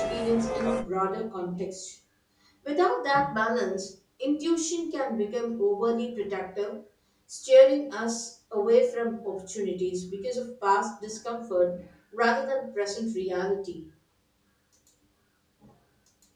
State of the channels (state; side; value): identical; both; correlation 1.00